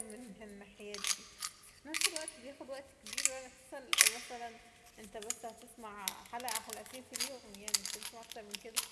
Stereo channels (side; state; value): both; identical; correlation 1.00